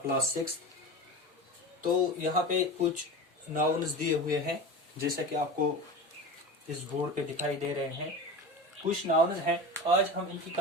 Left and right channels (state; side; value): normal; both; correlation 0.30